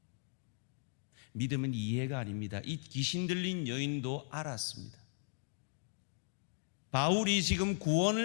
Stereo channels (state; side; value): silent; right; digital silence